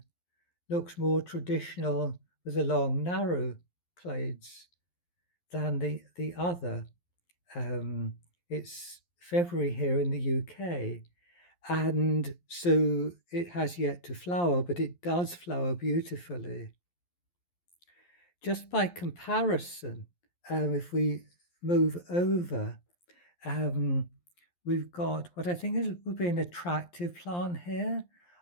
looks more traditional with the long, narrow clades than the other. It's February here in the UK, and so it has yet to flower, but it does flower beautifully. Just by comparison, if we move over, we've got what I think would be an attractive plant here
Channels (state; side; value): late; right; 11 ms